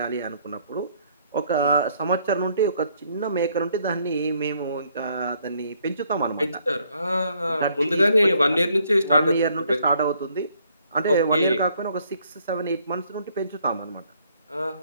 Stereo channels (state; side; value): inverted; both; correlation -0.67